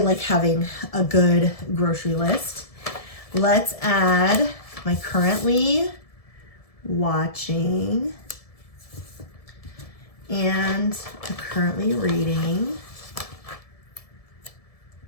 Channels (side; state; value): right; late; 1.7 ms